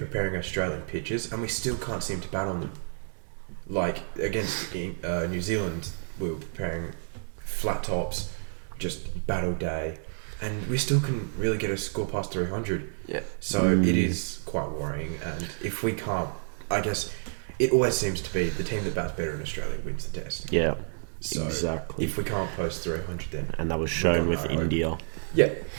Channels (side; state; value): left; silent; digital silence